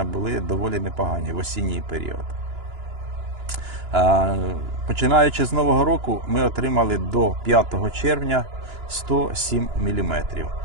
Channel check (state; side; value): late; left; 2.9 ms